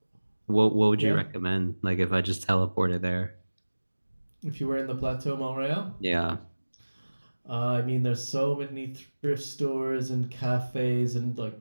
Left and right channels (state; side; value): inverted; both; correlation -1.00